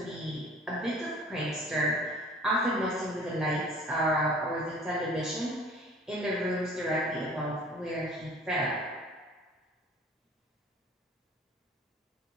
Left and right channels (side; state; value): both; normal; correlation 0.48